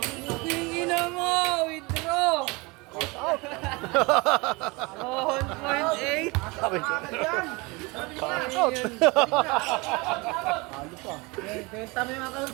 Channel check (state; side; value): quieter; left; 25.9 dB